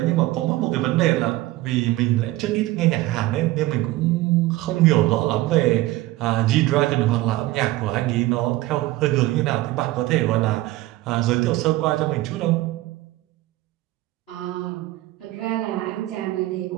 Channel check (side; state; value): left; quieter; 17.5 dB